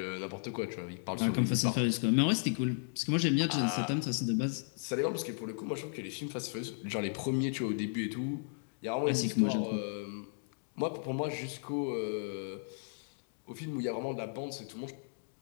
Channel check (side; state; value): right; silent; digital silence